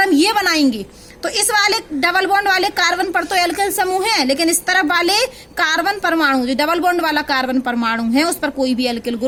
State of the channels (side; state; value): both; identical; correlation 1.00